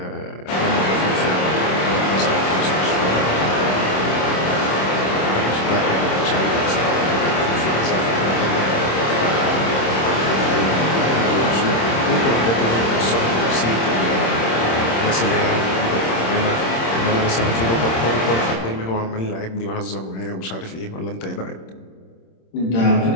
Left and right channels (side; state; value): right; late; 26 ms